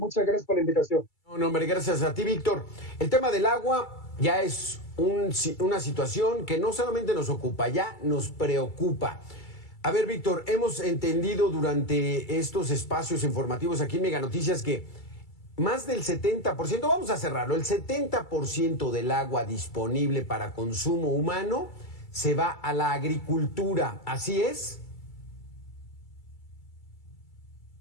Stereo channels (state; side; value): late; right; 2.3 ms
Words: gracias por la invitación. No, hombre, gracias a ti, Víctor. El tema del agua ya es una situación que no solamente nos ocupa, ya nos preocupa. A ver, Víctor, hemos entendido durante estos espacios informativos aquí en Mega Noticias que más del 70%, vamos a cerrarlo, el 70% del agua disponible para consumo humano se va a la agricultura. ¿Así es?